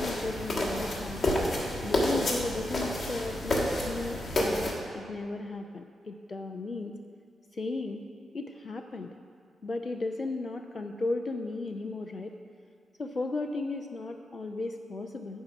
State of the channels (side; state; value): both; normal; correlation 0.86